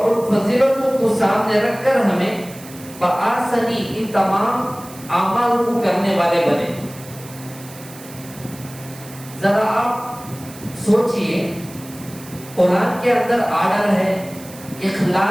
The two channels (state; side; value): noise; right; hiss, 18 dB below the sound